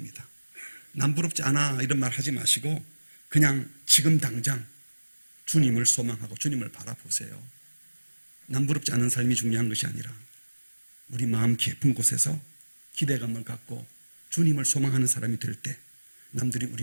남부럽지 않아 이런 말 하지 마시고 그냥 지금 당장 주님을 소망하고 주님을 바라보세요. 남부럽지 않은 삶이 중요한 것이 아니라 우리 마음 깊은 곳에서 기대감을 갖고 주님을 소망하는 사람이 될 때 남들이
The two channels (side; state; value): both; inverted; correlation -1.00